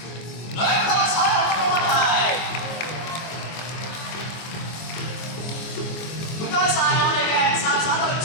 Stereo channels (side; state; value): right; late; 24 ms